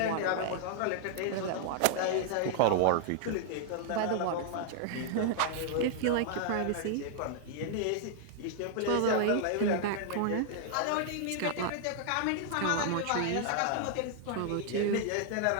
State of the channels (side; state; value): both; different; correlation 0.00